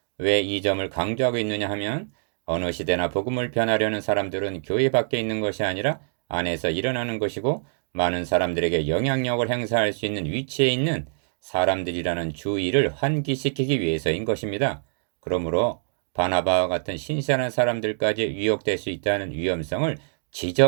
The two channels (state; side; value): silent; left; digital silence